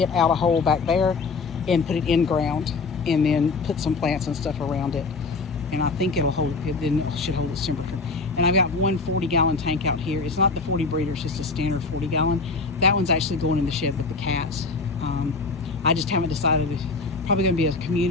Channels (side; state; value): right; quieter; 4.1 dB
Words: out a hole back there and put it in ground, and then put some plants and stuff around it. And I think it'll hold, it should hold its temperature. And I've got one 40-gallon tank out here. It's not the 40 breeder, it's just a standard 40-gallon. That one's actually going in the shed with the cats. I just haven't decided. It's probably gonna be a